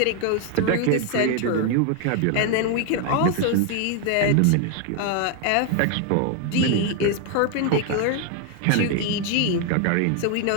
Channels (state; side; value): different; both; correlation 0.01